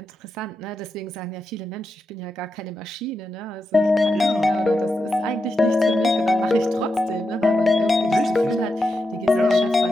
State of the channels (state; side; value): normal; both; correlation 0.87